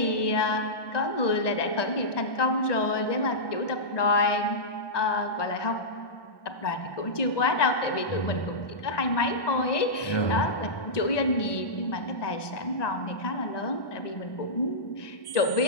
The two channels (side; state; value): right; late; 1.2 ms